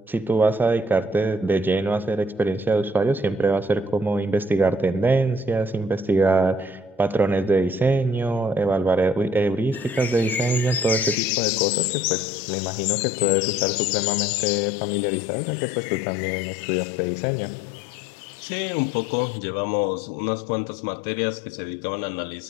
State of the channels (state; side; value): drops out; right; at 11.2 s